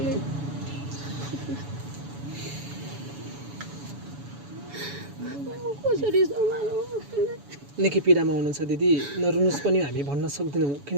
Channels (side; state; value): left; late; 7.1 ms